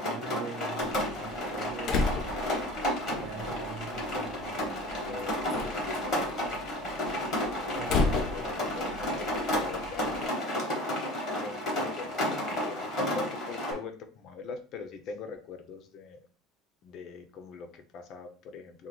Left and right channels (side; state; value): both; normal; correlation 0.39